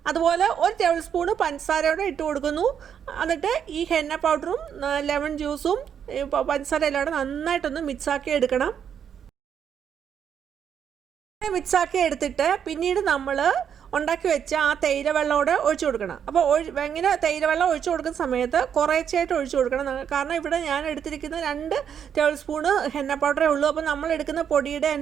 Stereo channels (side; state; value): left; quieter; 8.2 dB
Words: അതുപോലെ 1 ടേബിൾ സ്പൂണ് പഞ്ചസാരയോടെ ഇട്ട് കൊടുക്കുന്നു. എന്നിട്ട് ഈ ഹെന്ന പൗഡറും ലെമൺ ജ്യൂസും പഞ്ചസാര എല്ലാം നന്നായിട്ടൊന്ന് മിക്സാക്കി എടുക്കണം. മിക്സാക്കി എടുത്തിട്ട് പിന്നീട് നമ്മൾ ഉണ്ടാക്കി വെച്ച ആ തേയില വെള്ളമോടെ ഒഴിച്ചു കൊടുക്കണം. അപ്പോൾ ഇങ്ങനെ തേയില വെള്ളം ഒഴിച്ചു കൊടുക്കുന്ന സമയത്ത് കുറേശ്ശായിട്ട് ഒഴിച്ചു കൊടുക്കണം. കാരണം ഇവിടെ ഞാൻ എടുത്തിരിക്കുന്ന 2 ടേബിൾ സ്പൂണ് ഹെന്ന പൗഡറേ ഉള്ളൂ. അപ്പോൾ നമ്മൾ എടുക്കുന്ന പൊടിയുടെ